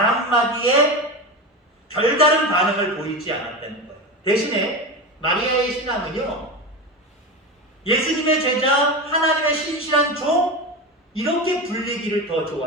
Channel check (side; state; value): both; normal; correlation 0.23